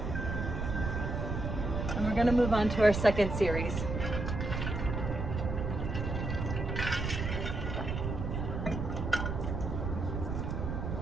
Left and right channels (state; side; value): noise; right; rumble, 3 dB below the sound